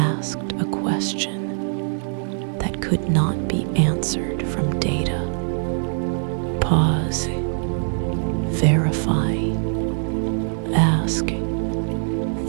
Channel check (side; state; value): left; silent; digital silence